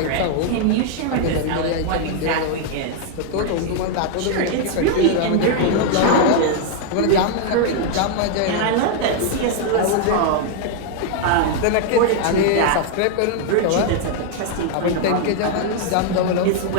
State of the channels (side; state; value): both; different; correlation 0.00